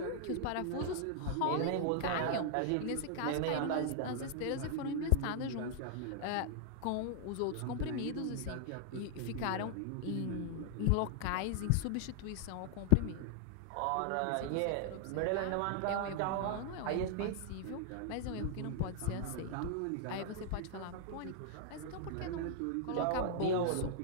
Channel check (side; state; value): both; different; correlation 0.00